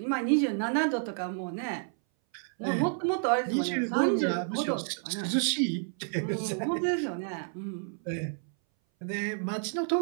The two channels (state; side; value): silent; left; 58 dB below the other